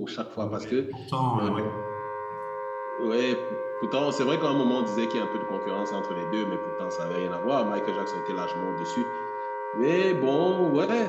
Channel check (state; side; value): identical; both; correlation 1.00